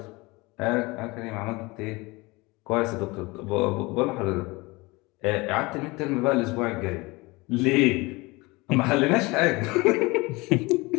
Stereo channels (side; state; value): right; quieter; 23.7 dB